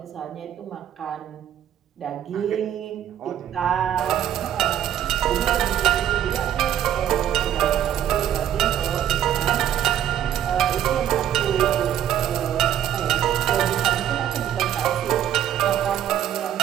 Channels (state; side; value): quieter; left; 10.7 dB